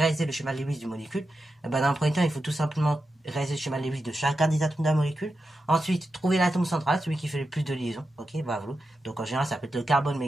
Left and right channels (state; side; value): normal; both; correlation 0.89